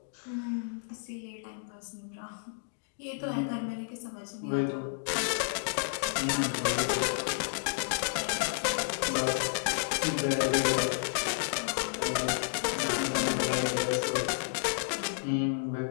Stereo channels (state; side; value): silent; right; digital silence